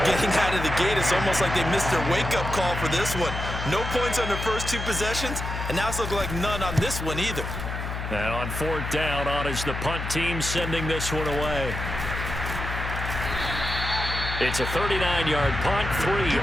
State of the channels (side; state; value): left; noise; hum, 5 dB below the sound